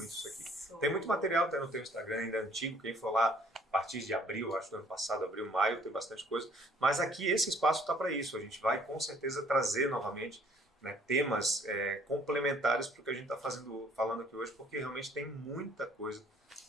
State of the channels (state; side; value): normal; both; correlation 0.60